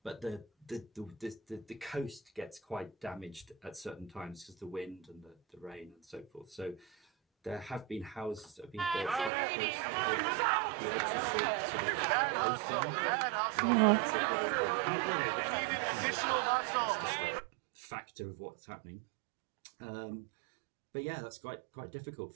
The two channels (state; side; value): drops out; left; at 9.3 s